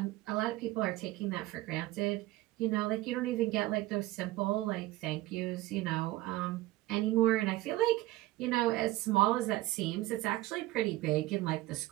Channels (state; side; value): quieter; left; 17.9 dB